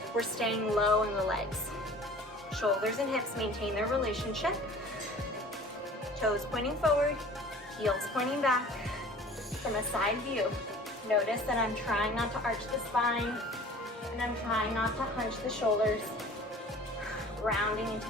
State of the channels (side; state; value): both; normal; correlation 0.46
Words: We're staying low in the legs. Shoulders and hips maintain their relationship. Toes pointing forward, heels pointing back. From a side view, notice that I'm trying not to arch the spine and I'm trying not to hunch the shoulders. Grounding into